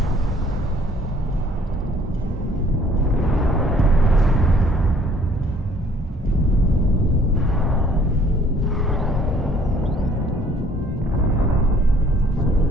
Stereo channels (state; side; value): normal; both; correlation 0.59